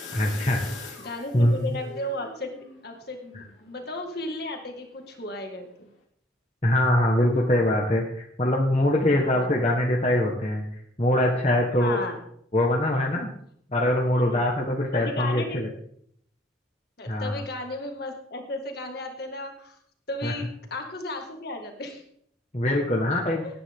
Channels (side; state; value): both; normal; correlation 0.60